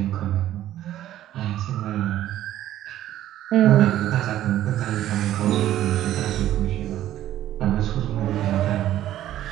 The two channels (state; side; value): quieter; left; 12.9 dB